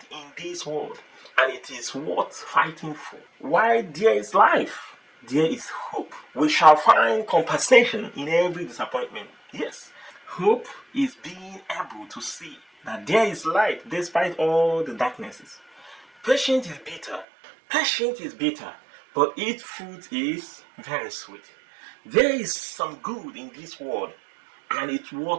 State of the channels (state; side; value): drops out; left; at 17.2 s